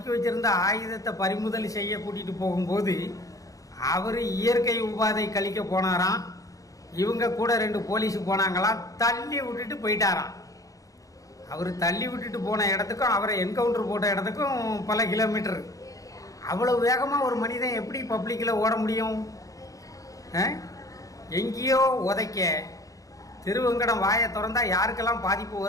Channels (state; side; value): late; right; 0.17 ms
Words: வச்சிருந்த ஆயுதத்தை பறிமுதல் செய்ய கூட்டிகிட்டு போகும்போது அவர் இயற்கை உபாதை கழிக்க போனாராம். இவங்க கூட 2 போலீஸ் போனாங்களாம், தள்ளி விட்டுட்டு போயிட்டாராம். அவர் தள்ளி விட்டுட்டு போன இடத்துக்கும் அவரை என்கவுண்டர் போட்ட இடத்துக்கும் பல கிலோமீட்டர். அவ்வளோ வேகமாக ஒரு மனிதன் எப்படி பப்ளிக்கில் ஓட முடியும்? எங்கேயோ உதைக்க திருவெங்கடம் வாயை திறந்தா யாருக்கெல்லாம் பாதிப்பு